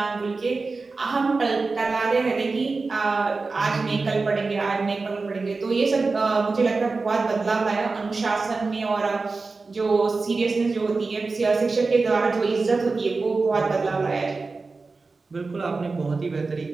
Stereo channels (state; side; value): quieter; left; 4.0 dB